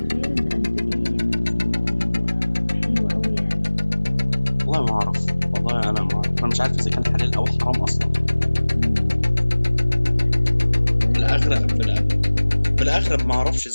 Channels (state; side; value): inverted; both; correlation -1.00